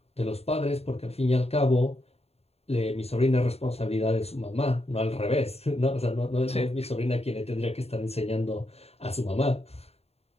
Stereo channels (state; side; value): late; right; 0.30 ms